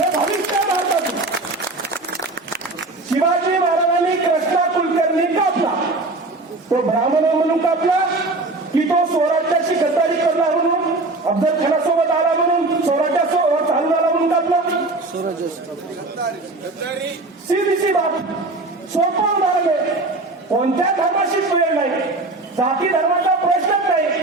भविष्य भारताचं. शिवाजी महाराजांनी कृष्णा कुलकर्णी कापला, तो ब्राह्मण म्हणून कापला की तो स्वराज्याशी गद्दारी करणार म्हणून, अफजल खानासोबत आला म्हणून स्वराज्यासोबत चालू झाला म्हणून कापला? सीधी बाब, सोपं उदाहरण आहे. कोणत्या धर्माशी वेळ नाही, जाती धर्माचा प्रश्नच नाही.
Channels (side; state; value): left; quieter; 3.1 dB